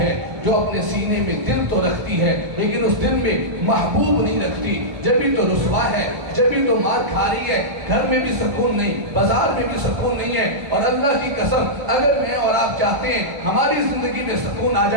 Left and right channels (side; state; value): left; late; 1.0 ms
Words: جو اپنے سینے میں دل تو رکھتی ہے لیکن اس دل میں محبوب نہیں رکھتی، جبھی تو رسوا ہے، جبھی تو مار کھا رہی ہے، گھر میں بھی سکون نہیں، بازار میں بھی سکون نہیں ہے۔ اور اللہ کی قسم اگر میں اور آپ چاہتے ہیں ہماری زندگی میں سکون آ